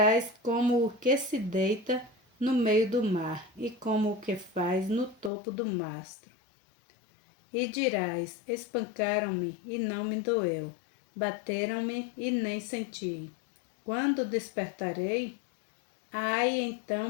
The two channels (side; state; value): right; drops out; at 5.3 s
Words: como o que se deita no meio do mar, e como o que faz no topo do mastro. E dirás: espancaram-me e não me doeu, bateram-me e nem senti. Quando despertarei, aí